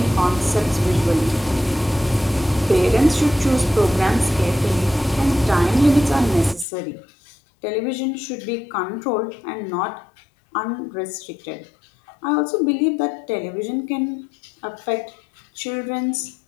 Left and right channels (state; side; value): drops out; right; at 6.7 s